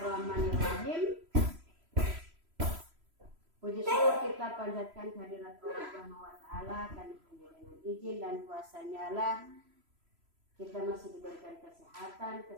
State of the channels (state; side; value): late; left; 3.0 ms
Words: Puji syukur kita panjatkan kehadirat Allah Subhanahu wa taala, karena hanya dengan izin dan kuasanya lah kita masih diberikan kesehatan,